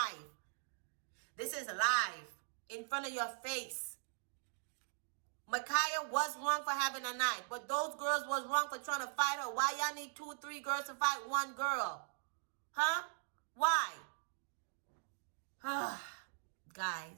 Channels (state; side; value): silent; left; digital silence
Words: This is live. In front of your face. Mekiah was wrong for having a knife. But those girls was wrong for trying to fight her. Why y'all need 2, 3 girls to fight one girl? Huh? Why?